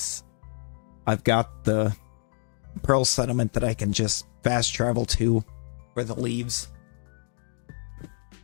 I've got the Pearl Settlement that I can just fast travel to for the leaves.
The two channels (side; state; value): right; silent; 60 dB below the other